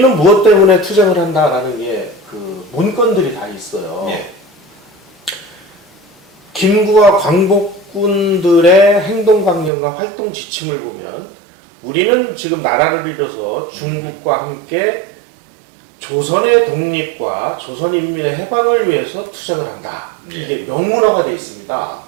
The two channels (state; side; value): drops out; left; at 9.7 s